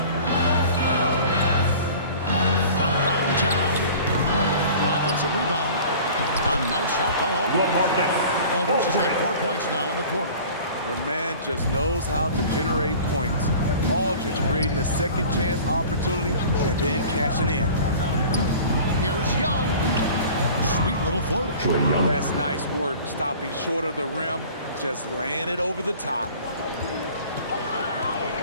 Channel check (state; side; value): inverted; both; correlation -0.43